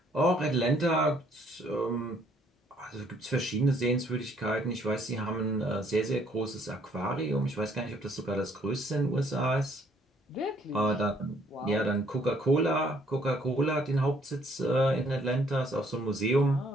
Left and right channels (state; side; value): normal; both; correlation 0.65